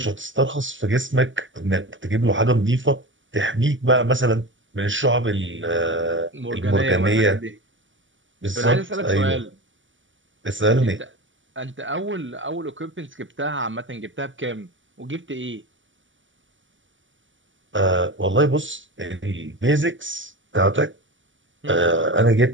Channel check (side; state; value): left; late; 0.56 ms